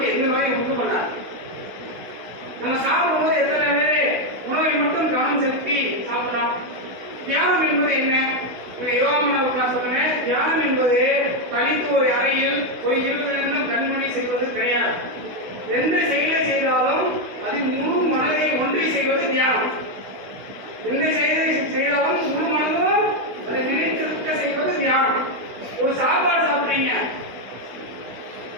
எந்த நோயும் உண்டு பண்ணாது. நம்ம சாப்பிடும்போது எத்தனை பேர் உணவை மட்டும் கவனம் செலுத்தி சாப்பிடலாம்? தியானம் என்பது என்ன? யோகாமனாவுக்கு நான் சொல்றேன், தியானம் என்பது தனித்து ஒரு அறையில் ஒரு 20 நிமிடம் கண்மணி செய்வது கிடையாது. எந்த செயலை செய்தாலும் அதில் முழு மனதை ஒன்றி செய்வது தியானம். எந்த செயலை செய்தாலும் முழு மனதும் அதை நினைத்திருக்க செய்வது தியானம். ஒரு சாப்பாடு சாப்பிட்டீங்க,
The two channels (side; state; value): left; late; 16 ms